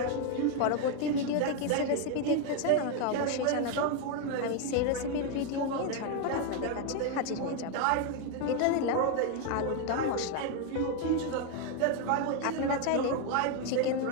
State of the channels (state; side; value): different; both; correlation 0.01